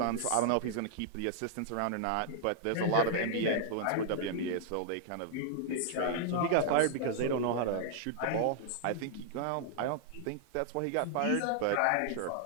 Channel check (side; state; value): both; different; correlation -0.01